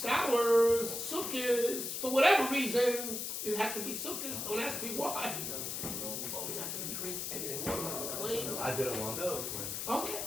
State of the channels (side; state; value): left; noise; hiss, 4 dB below the sound